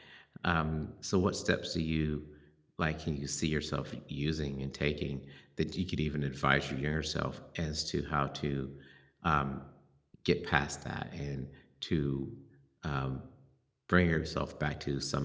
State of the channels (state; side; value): identical; both; correlation 1.00